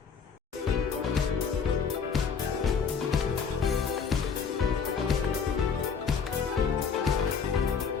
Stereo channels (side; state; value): right; quieter; 6.1 dB